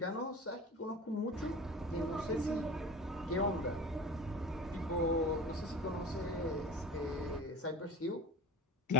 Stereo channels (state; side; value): normal; both; correlation 0.38